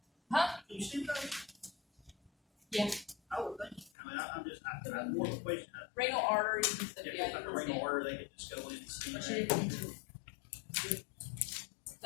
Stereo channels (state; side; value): drops out; right; at 3.9 s